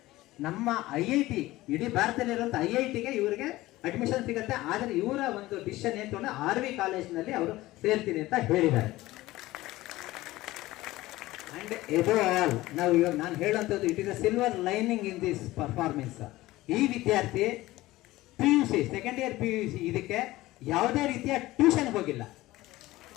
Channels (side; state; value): right; quieter; 17.8 dB